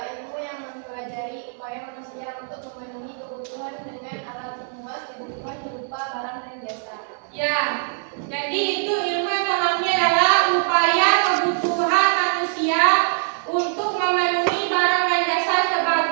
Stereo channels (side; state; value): left; silent; digital silence